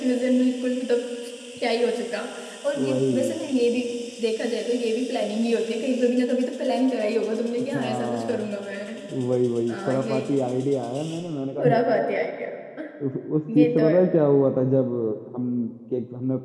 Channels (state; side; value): identical; both; correlation 1.00